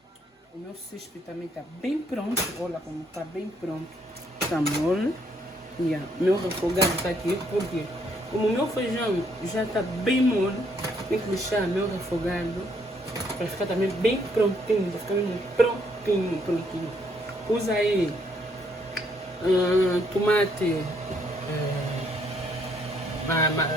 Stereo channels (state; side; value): normal; both; correlation 0.70